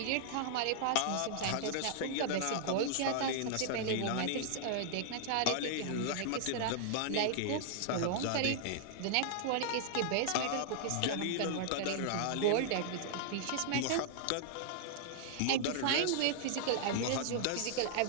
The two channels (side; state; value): both; different; correlation -0.01